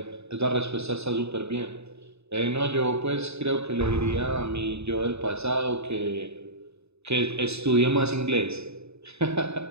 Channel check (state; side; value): late; left; 0.80 ms